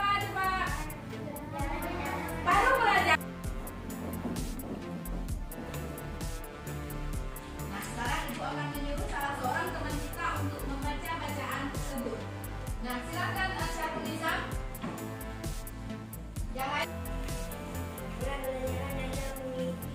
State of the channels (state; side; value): identical; both; correlation 1.00